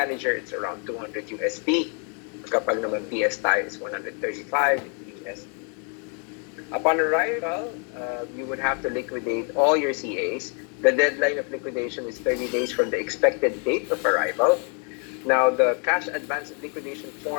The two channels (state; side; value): quieter; right; 38.8 dB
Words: it's around 200 USD. Kapag naman PS tayo is 135 USD. Upon arrival, you would have to liquidate all your CAs. The deadline of liquidation is 30 days from the expected date of arrival. Now, the cash advance liquidation